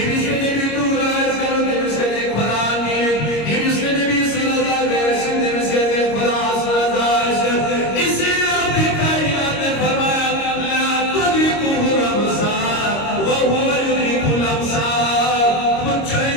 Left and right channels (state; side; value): late; right; 26 ms